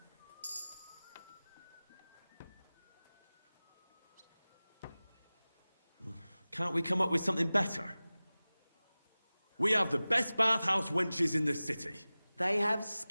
Can't we come up with something better? We have the best bathhouse wenches in the city. They have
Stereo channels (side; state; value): both; inverted; correlation -0.98